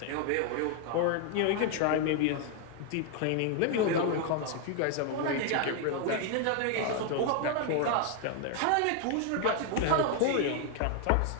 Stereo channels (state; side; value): different; both; correlation 0.01